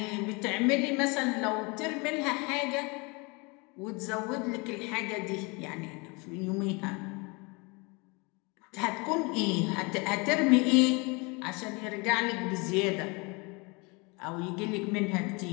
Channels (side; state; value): right; quieter; 28.7 dB